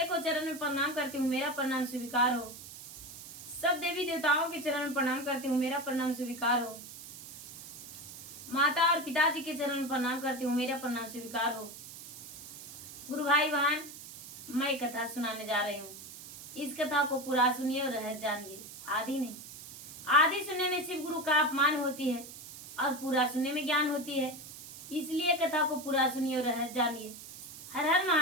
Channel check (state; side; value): noise; right; hiss, 14 dB below the sound